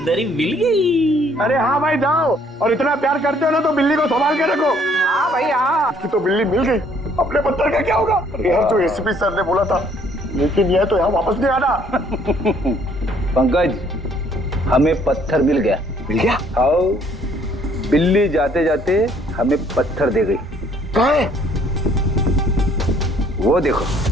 मिल गई। अरे हाँ भाई जाओ, और इतना प्यार करते हो ना तो बिल्ली को संभाल के रखो। हाँ भाई हाँ। कि तो बिल्ली मिल गई, अपने पत्थर का क्या होगा? यार जो एसीपी सर ने बोला था, लेकिन यह तो यहाँ वापस नहीं आना। पंकज, हमें पत्थर मिल गया। मिल गया? आओ, बिल्ली जाते जाते हमें पत्थर दे गई। कहाँ है? वो देखो,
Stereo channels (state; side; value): normal; both; correlation 0.62